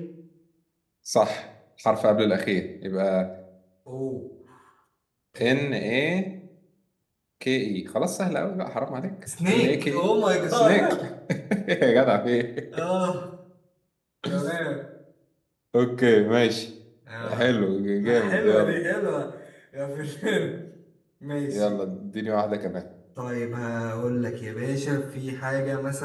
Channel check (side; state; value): both; identical; correlation 1.00